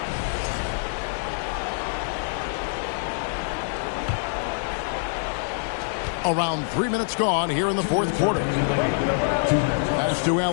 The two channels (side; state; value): right; silent; 59 dB below the other